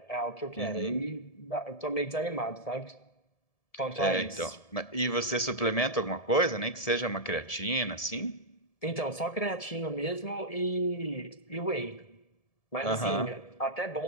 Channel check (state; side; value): late; right; 1.7 ms